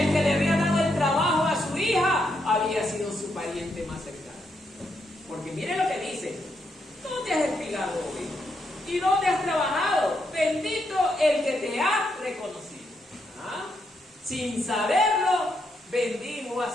el que le había dado el trabajo a su hija había sido su pariente más cercano. Porque mire lo que dice: ¿dónde has espigado hoy? ¿Y dónde has trabajado? Bendito el que te ha reconocido. ¿Ah? Sin saberlo, bendijo a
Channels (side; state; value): both; normal; correlation 0.79